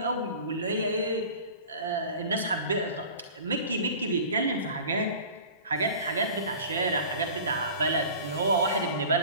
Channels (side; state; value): both; inverted; correlation -0.40